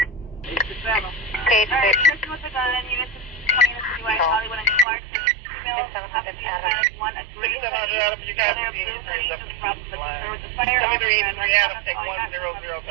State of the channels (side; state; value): left; drops out; at 4.9 s